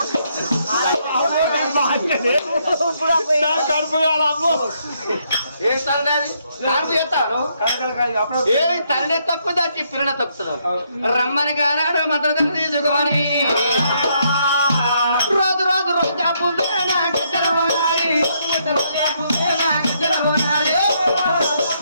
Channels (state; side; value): inverted; both; correlation -0.74